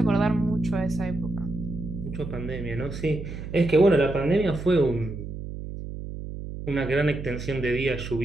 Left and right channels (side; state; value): right; noise; hum, 8 dB below the sound